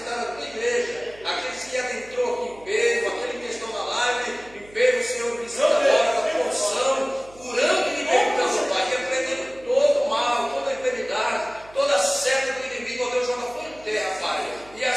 a tua igreja, aqueles que adentrou aqui enfermo, aqueles que estão na live, enfermo, Senhor, visita agora da porção, curando e libertando, Pai, repreendendo todo mal, toda enfermidade, toda seta do inimigo, ó Deus, joga fora em terra, Pai. E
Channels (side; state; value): right; noise; hum, 24 dB below the sound